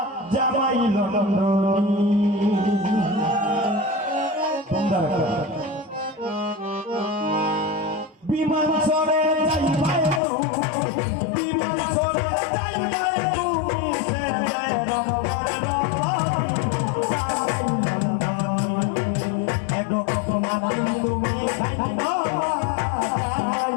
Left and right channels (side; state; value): right; drops out; at 10.2 s